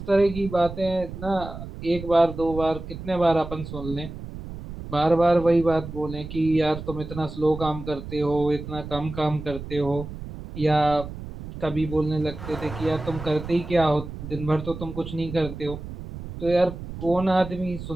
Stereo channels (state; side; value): noise; right; rumble, 10 dB below the sound